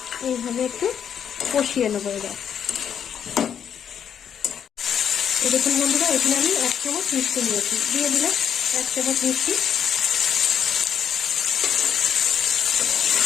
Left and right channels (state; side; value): quieter; right; 8.4 dB